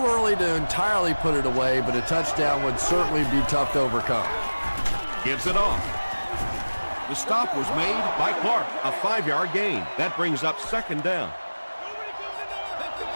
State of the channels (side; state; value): both; inverted; correlation -1.00